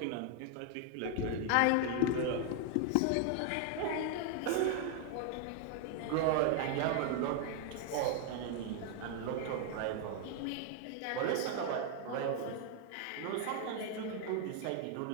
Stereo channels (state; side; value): different; both; correlation 0.00